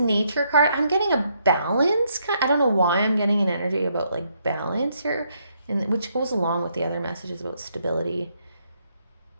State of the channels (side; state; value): both; inverted; correlation -0.74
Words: card, I'm getting a balance. I don't know why I'm getting an energy about like balance here, and which goes along with the other messages about stability.